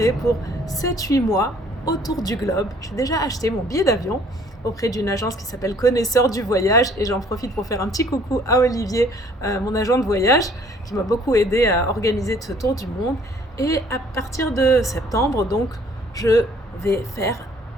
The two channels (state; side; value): normal; both; correlation 0.58